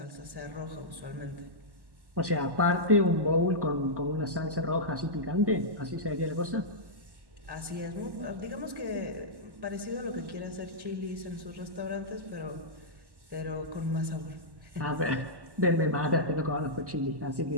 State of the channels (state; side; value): late; left; 1.1 ms